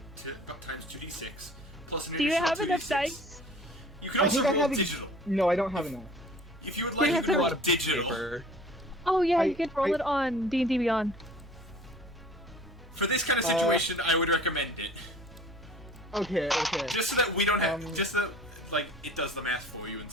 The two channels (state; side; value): normal; both; correlation 0.47